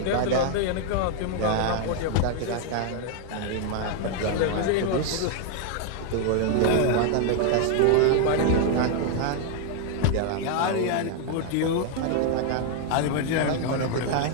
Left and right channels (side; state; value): both; different; correlation 0.00